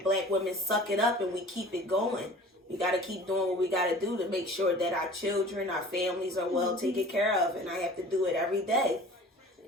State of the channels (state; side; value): normal; both; correlation 0.44